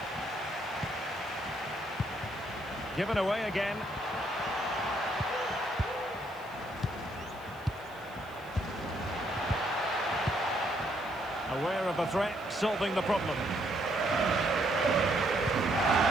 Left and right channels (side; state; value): right; noise; hiss, 26 dB below the sound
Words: Given away again. Aware of the threat, solving the problem.